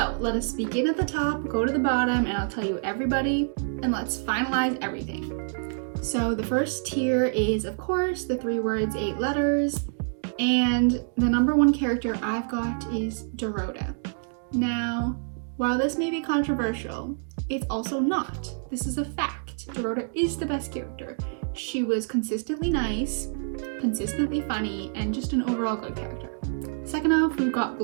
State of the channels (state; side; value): silent; left; digital silence